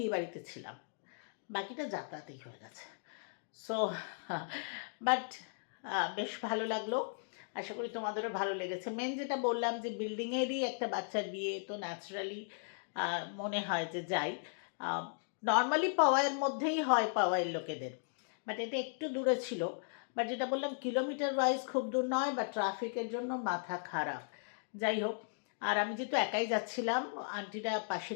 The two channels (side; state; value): right; silent; digital silence